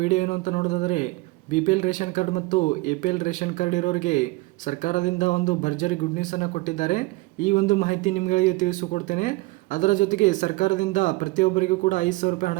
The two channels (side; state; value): left; quieter; 21.9 dB